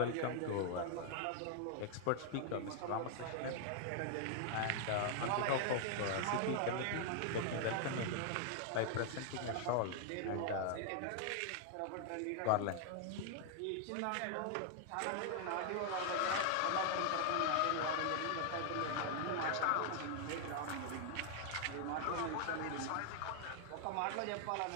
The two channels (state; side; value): different; both; correlation 0.00